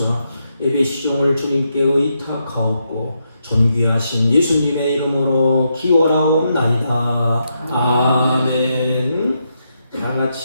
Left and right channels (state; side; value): inverted; both; correlation -0.82